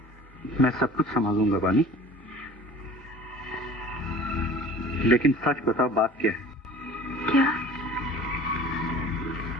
मैं सब कुछ संभालूंगा बानी, लेकिन सच बताओ बात क्या है? क्या?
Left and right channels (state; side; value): normal; both; correlation 0.45